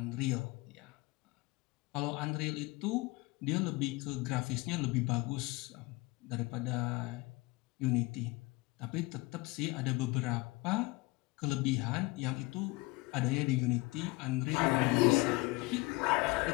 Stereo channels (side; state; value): right; quieter; 23.7 dB